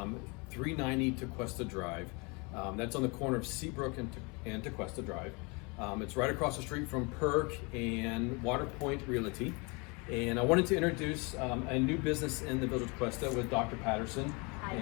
Tequesta Drive. That's on the corner of Seabrook and Tequesta Drive. It's right across the street from Perk and Waterpoint Realty. And I wanted to introduce a new business in the Village of Tequesta with Dr. Patterson. Hi.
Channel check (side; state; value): right; quieter; 29.9 dB